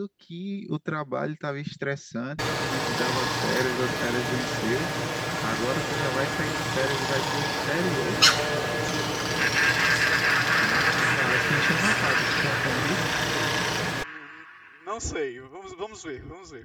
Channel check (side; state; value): both; identical; correlation 1.00